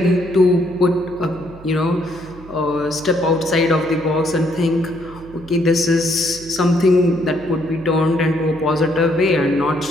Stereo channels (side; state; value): right; noise; hum, 19 dB below the sound